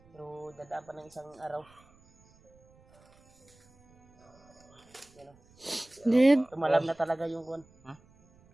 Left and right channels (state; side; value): noise; right; rumble, 29 dB below the sound